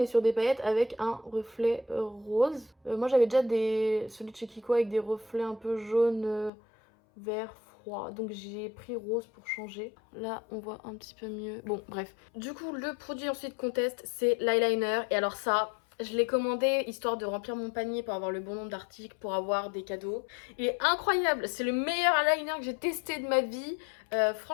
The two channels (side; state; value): right; drops out; at 6.5 s